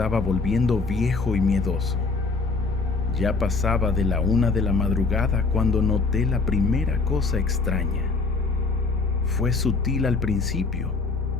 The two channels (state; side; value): quieter; right; 4.0 dB